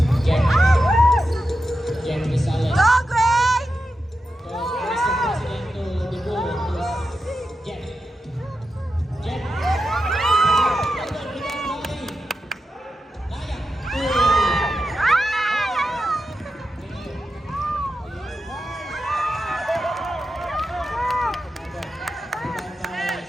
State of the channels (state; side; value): normal; both; correlation 0.89